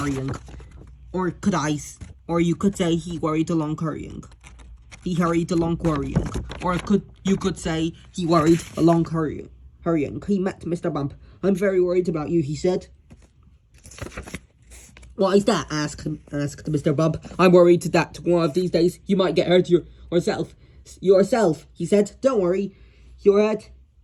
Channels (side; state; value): both; identical; correlation 1.00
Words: Or you could say he worried along hurrying. He hurried along worrying. Or you could say he worried along hurrying. He met Mr. Bump. "I'm very worried about you," he said. "Why is that?" asked Mr. Bump. "I'm worried that one of these days you might get hurt yourself," he said. "Don't worry your head